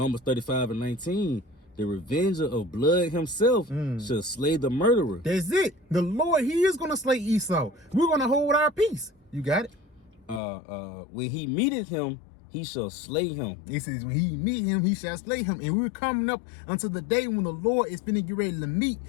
35 and 19. The revenger of blood himself shall slay the murderer. That's it. The Lord, he is going to slay Esau. We're going to hold our peace. You got it? When he meeteth him, he shall slay him. It says, when he meet him, he shall slay him. And we're coming up until the day when the Lord is finna get ready to meet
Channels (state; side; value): drops out; right; at 10.4 s